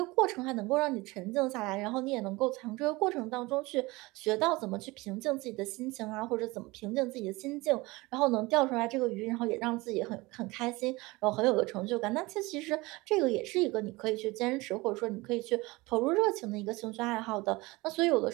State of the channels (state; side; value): quieter; left; 22.3 dB